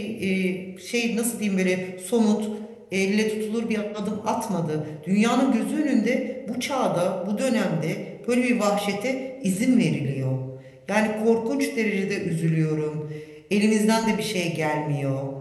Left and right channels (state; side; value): identical; both; correlation 1.00